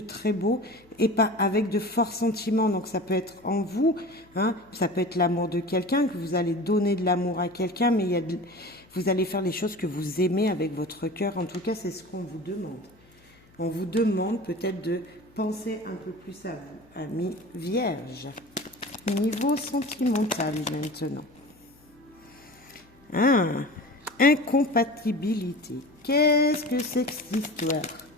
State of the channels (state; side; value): noise; left; hum, 29 dB below the sound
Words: très beau, et pas avec de forts sentiments. Donc ça peut être en vous, hein, ça peut être l'amour de quelqu'un, que vous allez donner de l'amour à quelqu'un, mais vous allez faire les choses que vous aimez avec votre cœur. En tout cas, c'est ce qu'on vous demande. On vous demande peut-être de penser un peu plus à vous, amis vierges. Niveau sentimental maintenant. Incompatibilité. Qu'est-ce que c'est que cette histoire?